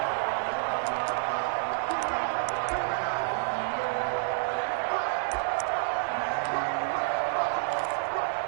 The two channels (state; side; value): silent; left; digital silence